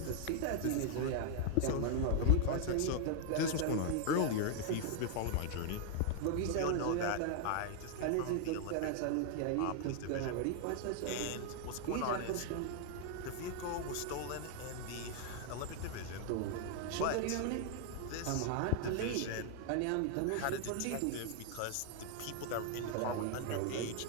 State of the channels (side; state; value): both; different; correlation 0.00